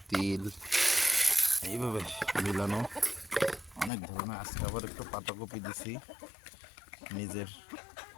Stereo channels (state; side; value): drops out; right; at 3.9 s